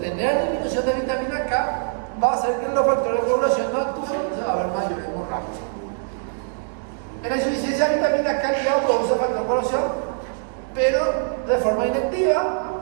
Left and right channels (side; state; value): left; silent; 61 dB below the other